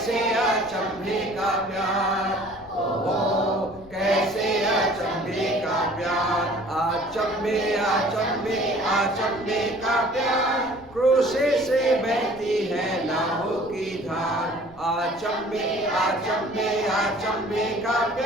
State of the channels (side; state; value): left; noise; rumble, 22 dB below the sound